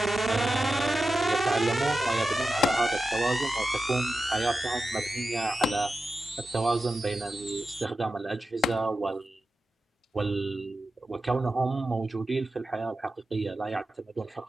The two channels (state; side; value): normal; both; correlation 0.91